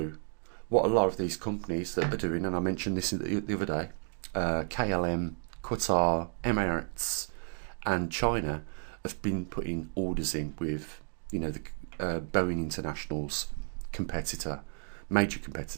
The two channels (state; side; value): silent; left; 56 dB below the other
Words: what a lot of these companies that are doing, and I mentioned this the other day, KLM, Qatar, Emirates and China have been putting orders in with, the Boeing International's major